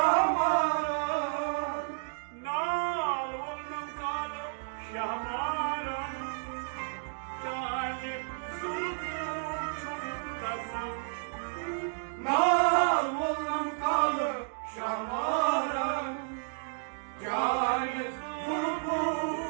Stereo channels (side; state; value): left; silent; digital silence